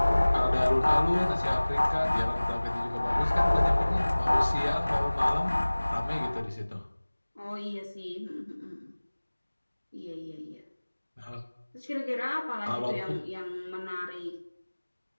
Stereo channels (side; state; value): both; inverted; correlation -1.00